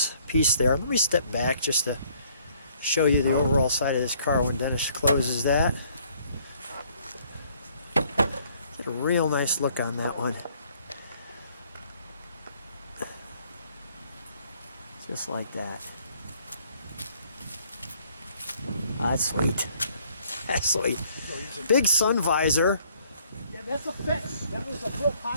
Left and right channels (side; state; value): both; inverted; correlation -0.63